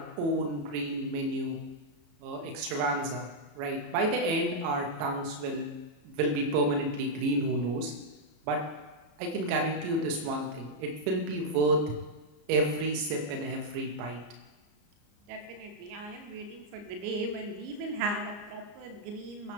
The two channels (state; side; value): late; left; 34 ms